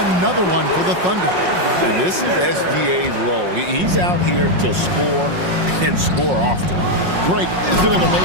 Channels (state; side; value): late; left; 5.5 ms